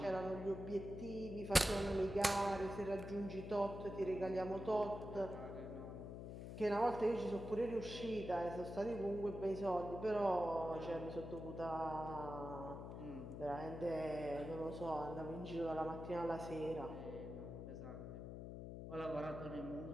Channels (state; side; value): noise; left; hum, 8 dB below the sound